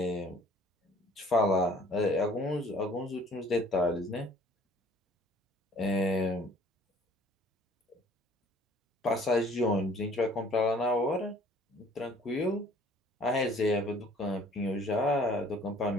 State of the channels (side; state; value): both; normal; correlation 0.55